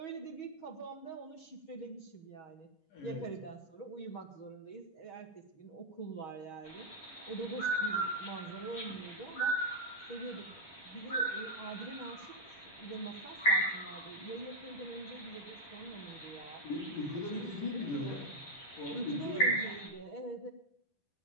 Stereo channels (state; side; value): late; right; 10 ms